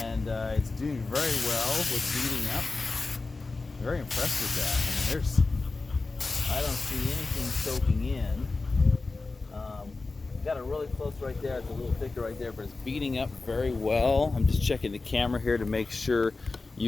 it's doing very well with beating up. Very impressed with that. I mean, I don't see anything soaking in. Got it really close right there. It's a little thicker right there, but it's beating up very well. I'm just checking the camera here to make sure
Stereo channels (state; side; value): quieter; right; 3.7 dB